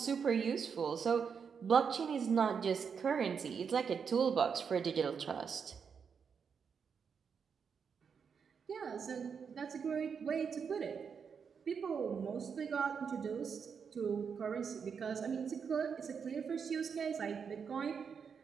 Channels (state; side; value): quieter; left; 6.4 dB